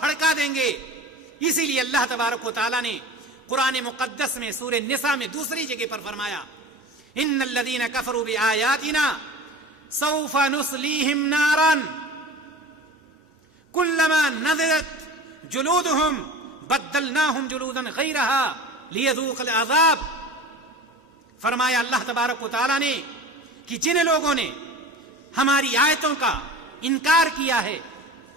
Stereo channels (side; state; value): both; normal; correlation 0.36